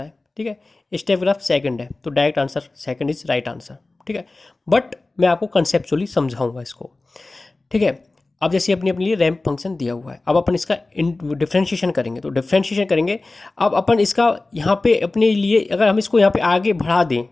ठीक है, स्टेप ग्राफ सेकंड है, तो direct answer second is right answer. ठीक है, बट मैं आपको कंसेप्चुअली समझाऊंगा इसको। ठीक है, अब जैसे अपनी अपने लिए रैंप फंक्शन दिया हुआ है, अब अपन इसका डिफ्रेंशिएशन करेंगे, तो डिफ्रेंशिएशन करेंगे। अब अपन इसका यहाँ पे अपने लिए अगर हम इसको यहाँ पे आगे बढ़ा दें,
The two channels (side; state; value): right; quieter; 3.2 dB